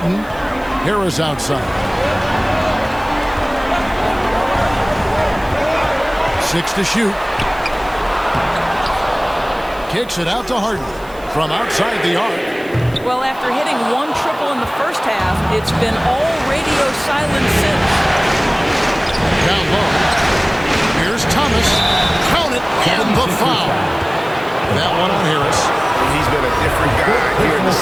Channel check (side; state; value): right; noise; hiss, 24 dB below the sound